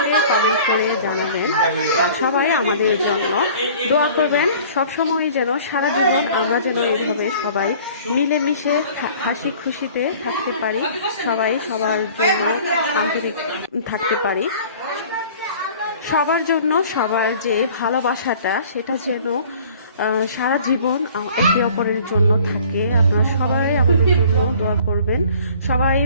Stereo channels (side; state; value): both; inverted; correlation -0.49